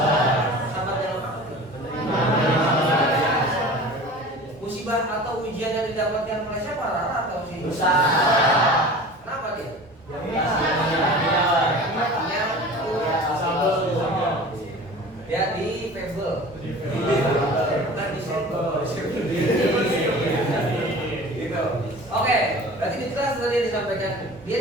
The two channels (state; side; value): normal; both; correlation 0.39